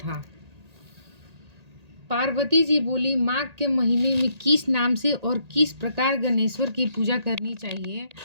पार्वती जी बोली, माघ के महीने में किस नाम से और किस प्रकार गणेश्वर की पूजा करनी चाहिए,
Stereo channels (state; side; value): late; left; 1.8 ms